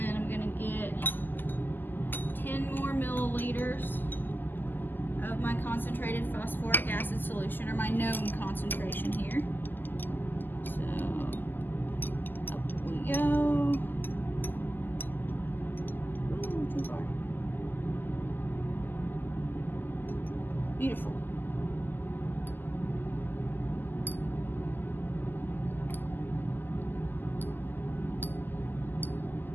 I'm going to get 10 more milliliters of my concentrated phosphoric acid solution, or my known concentration here. So, up we go. Ooh, too far. Beautiful.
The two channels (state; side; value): late; right; 0.090 ms